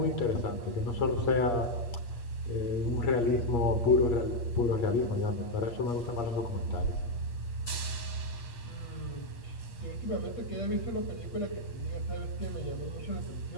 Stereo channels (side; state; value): right; late; 8.5 ms